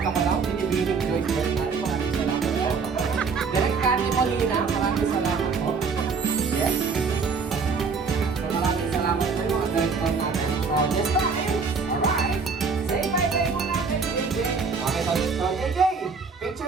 ko lang, binibining Joyce Bernal. Maraming salamat po. Direct Candy Molina, maraming salamat po. Yes. So, maraming salamat po yung mga director natin. So, this time, alright. Say bye-bye muna kay JJ. Okay, so JJ,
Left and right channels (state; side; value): quieter; left; 5.1 dB